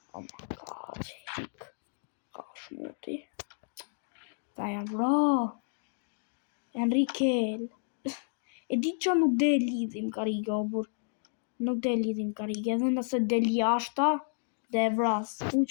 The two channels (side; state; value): right; silent; digital silence